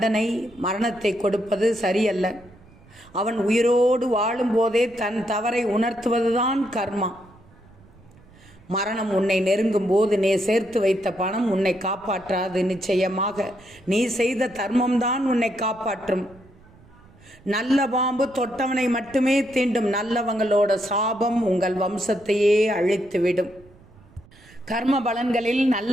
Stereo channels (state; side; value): noise; right; rumble, 26 dB below the sound